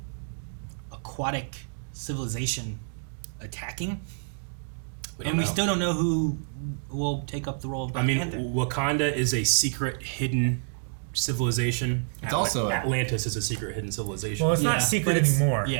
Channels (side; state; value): left; silent; digital silence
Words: aquatic civilization attacking? And we still don't know who will take up the role of Black Panther. Wakanda is a secret, hidden civilization. It's also Atlantis is a secret, hidden civilization. Well, it's not secret anymore.